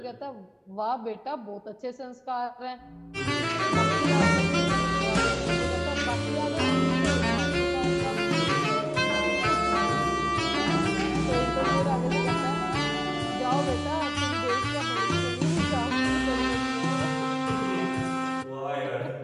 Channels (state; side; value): identical; both; correlation 1.00